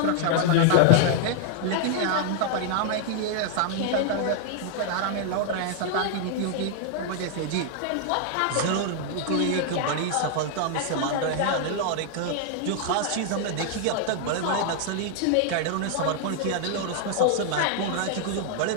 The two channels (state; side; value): different; both; correlation -0.01